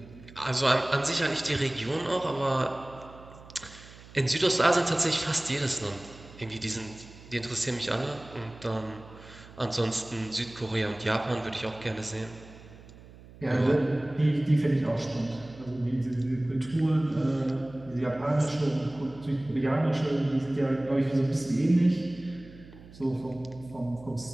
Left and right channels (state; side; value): noise; right; hum, 20 dB below the sound